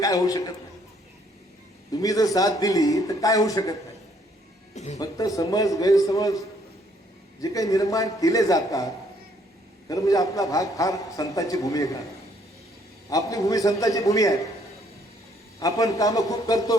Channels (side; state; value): both; normal; correlation 0.66